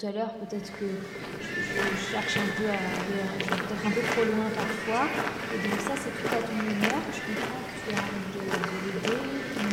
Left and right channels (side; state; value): both; identical; correlation 1.00